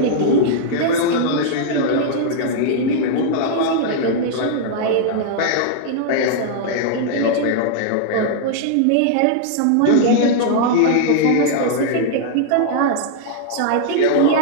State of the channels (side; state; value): both; different; correlation -0.01